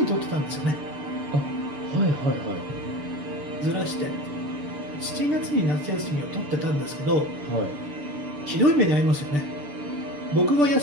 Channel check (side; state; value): left; late; 6.8 ms